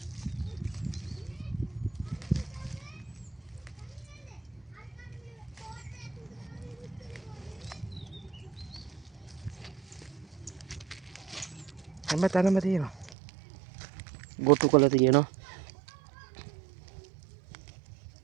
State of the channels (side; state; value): left; drops out; at 13.2 s